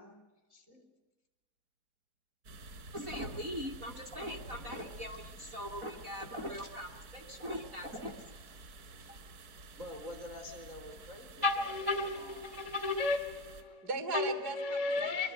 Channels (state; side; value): late; left; 4.6 ms